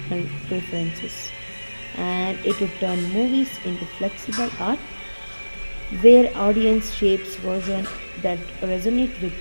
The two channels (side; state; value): both; inverted; correlation -1.00